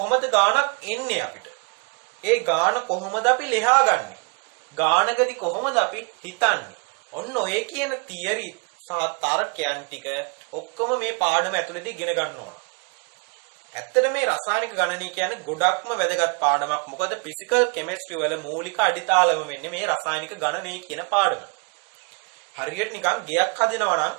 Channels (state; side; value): quieter; left; 34.1 dB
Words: ගානක් එන්නේ අපිට? ඒ ගාන කොහොමද අපි ලියාගන්නේ? ගානකදී කොහොමද අපි හිතන්නේ? ඔන්න ඔය කියන තියරි සහ තර්කයන් ටික ඔක්කොම මේ පාඩම ඇතුළතදී ඉගෙන ගන්න ඕන. ඇත්තට මේ රසායනික ගණනය කියන්නේ ගොඩක්ම වැදගත් පාඩමක්. මොකද ෆිසිකල් කෙමිස්ට්‍රි වල මූලික අඩිතාලම වෙන්නේ මේ රසායනික ගණනය කියන පාඩම. හරියට නිකන් ගෙයක් හදනවා නම්